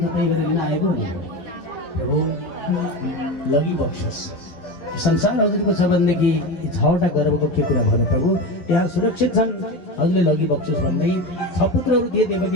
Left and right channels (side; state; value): right; late; 11 ms